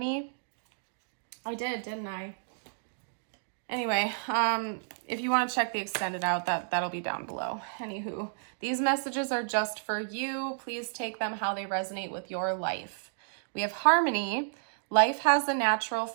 I did, didn't I? Anyway, if you want to check the extended out, that'll be down below. Anywho, these messages are just for you. Please take them how they resonate with your life. We have harmony. Life has a natural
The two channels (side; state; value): left; silent; digital silence